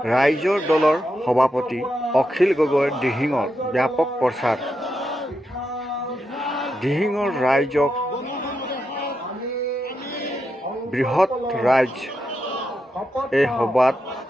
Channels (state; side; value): normal; both; correlation 0.85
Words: ৰাইজৰ দলৰ সভাপতি অখিল গগৈৰ দিহিঙৰ ব্যাপক প্ৰচাৰ। দিহিঙৰ ৰাইজক বৃহৎ ৰাইজ এই সভাত